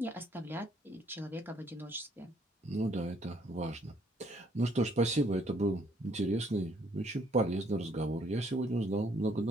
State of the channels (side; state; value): both; normal; correlation 0.66